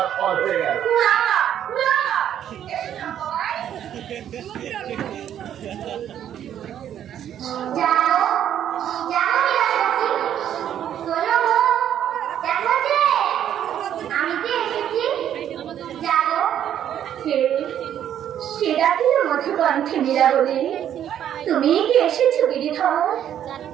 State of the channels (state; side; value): quieter; left; 10.3 dB